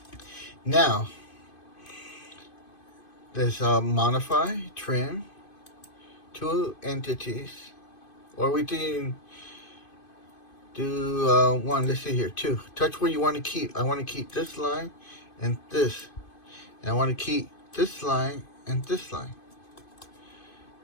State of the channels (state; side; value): late; right; 2.5 ms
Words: Now, let's modify, trim, two entities. Or we can do one, let's see here, 2. Touch where you want to keep. I want to keep this line and this. And I want to keep this line and this line.